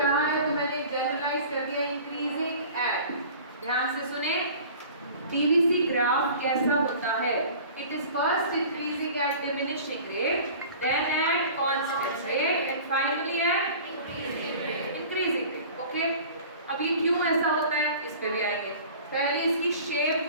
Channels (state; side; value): inverted; both; correlation -0.43